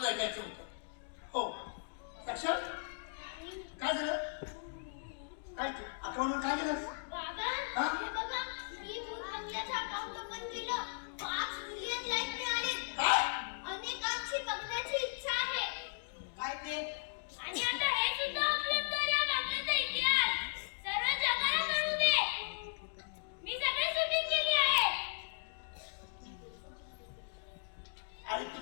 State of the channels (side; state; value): right; silent; digital silence